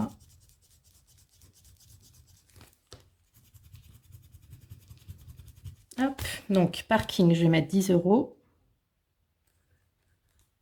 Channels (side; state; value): both; identical; correlation 1.00